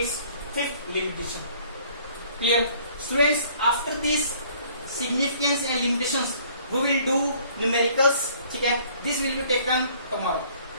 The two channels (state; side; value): inverted; both; correlation -0.58